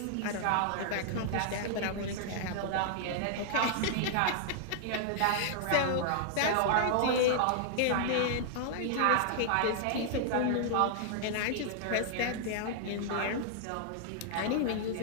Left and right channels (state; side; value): different; both; correlation -0.01